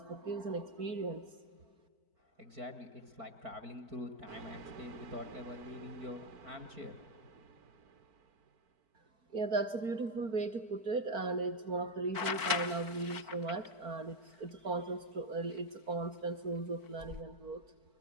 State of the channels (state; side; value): late; left; 4.5 ms